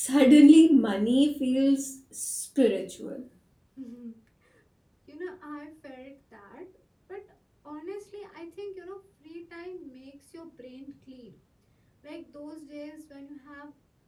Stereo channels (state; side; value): identical; both; correlation 1.00